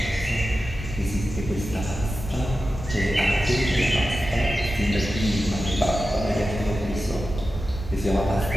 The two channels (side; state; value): both; normal; correlation 0.92